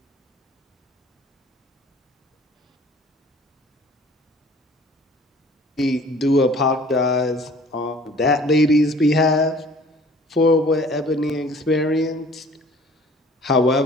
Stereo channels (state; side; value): normal; both; correlation 0.51